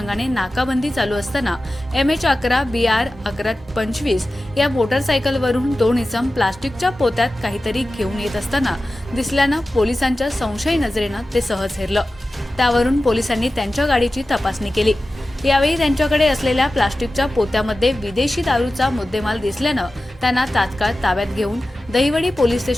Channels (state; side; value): normal; both; correlation 0.95